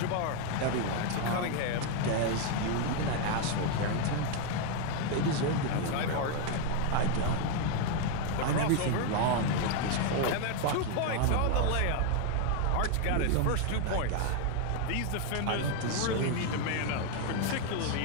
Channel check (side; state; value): both; different; correlation 0.01